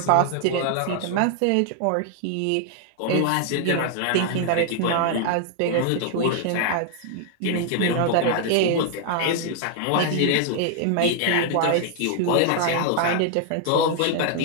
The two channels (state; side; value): different; both; correlation 0.00